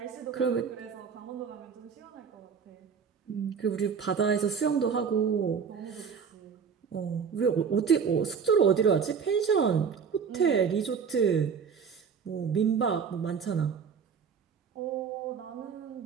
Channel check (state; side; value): quieter; left; 6.4 dB